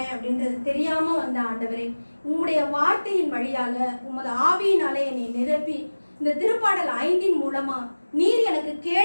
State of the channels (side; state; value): both; inverted; correlation -1.00